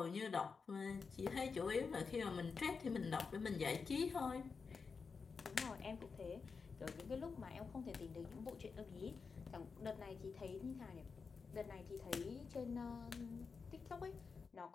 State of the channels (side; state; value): right; quieter; 5.1 dB